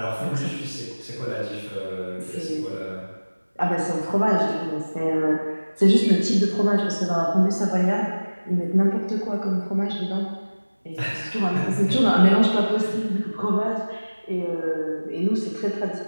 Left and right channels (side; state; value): both; inverted; correlation -1.00